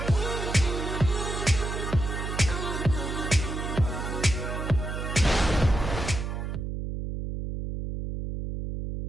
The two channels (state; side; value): noise; right; hum, 4 dB below the sound